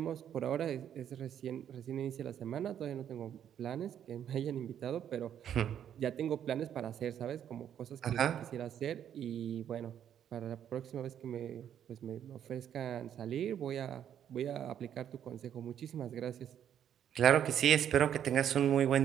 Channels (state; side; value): quieter; left; 9.6 dB